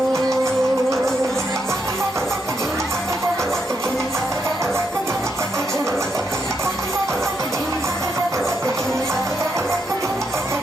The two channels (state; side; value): normal; both; correlation 0.79